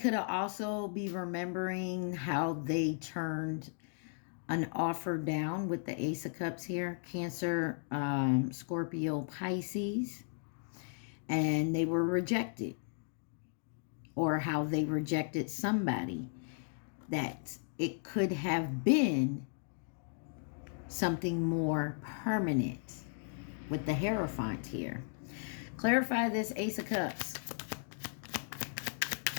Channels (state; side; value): silent; right; digital silence